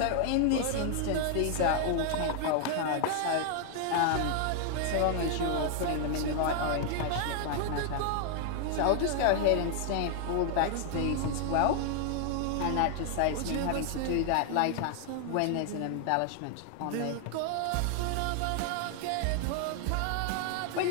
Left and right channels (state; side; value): different; both; correlation 0.00